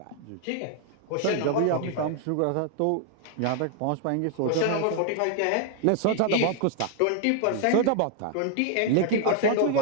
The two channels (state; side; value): different; both; correlation 0.00